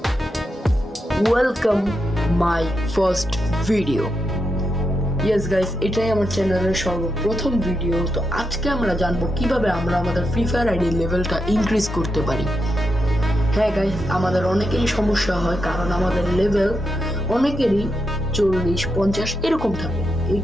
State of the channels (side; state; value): both; normal; correlation 0.85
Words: Welcome my first video. Yes guys, এটাই আমার চ্যানেলের সর্বপ্রথম ভিডিও। তো আজকে আমরা জানবো কিভাবে আমরা আমাদের ফ্রি ফায়ার আইডি লেভেলটা ইনক্রিজ করতে পারি। হ্যাঁ গাইস, আমাদের অনেকেরই সমস্যা হয় কারণ আমাদের লেভেল অনেকেরই 40-50 এরকম থাকে। এই